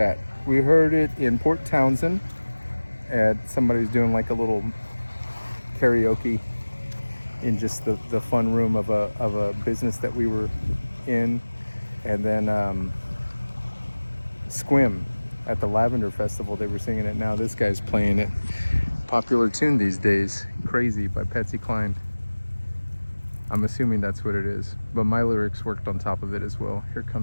We heard it in Port Townsend, and somebody's doing like a little karaoke in just the fun room of a business that we were in. And then Squim at the Lavender Festival, they were singing it. Now this guy's playing it. Popular tune these days, Crazy by Patsy Cline. I'm assuming that's what it is, but my lyrics worked on top of it as well. Here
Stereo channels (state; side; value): inverted; both; correlation -1.00